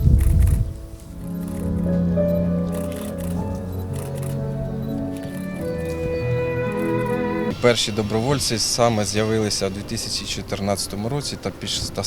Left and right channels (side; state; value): both; identical; correlation 1.00